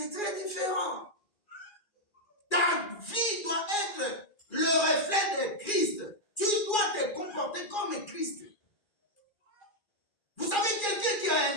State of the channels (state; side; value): late; right; 2.4 ms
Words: très différent. Ta vie doit être le reflet de Christ. Tu dois te comporter comme Christ. Vous savez, quelqu'un qui a